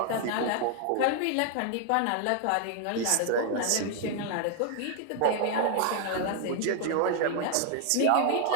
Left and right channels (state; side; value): different; both; correlation 0.00